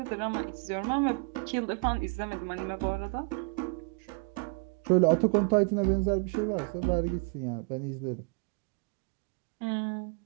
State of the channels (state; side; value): quieter; left; 33.5 dB